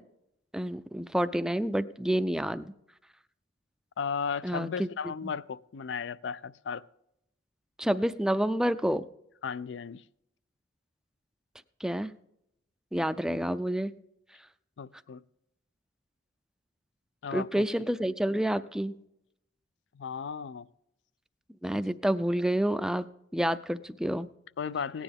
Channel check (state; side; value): normal; both; correlation 0.80